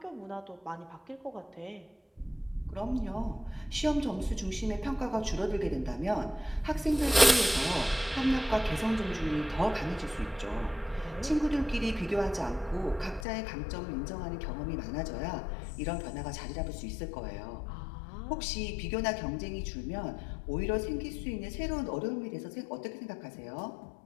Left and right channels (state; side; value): drops out; right; at 13.2 s